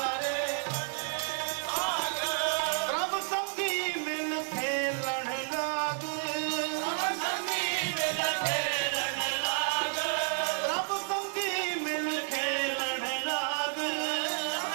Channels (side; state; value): left; silent; 57 dB below the other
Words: प्रभ संगी मिल खेलन लाग प्रभ संगी मिल खेलन लाग